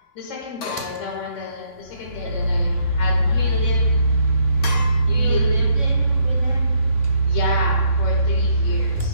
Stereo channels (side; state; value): right; late; 3.6 ms